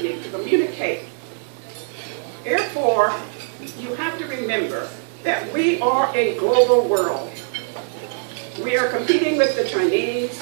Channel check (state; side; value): silent; left; digital silence